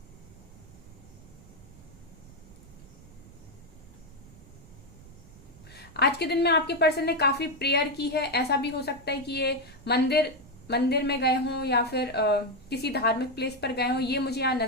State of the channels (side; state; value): right; noise; rumble, 21 dB below the sound